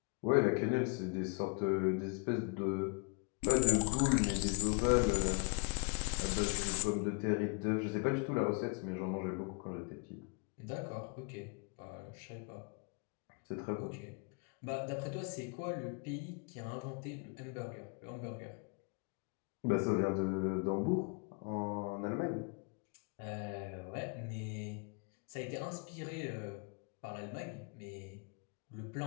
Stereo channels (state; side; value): quieter; right; 33.8 dB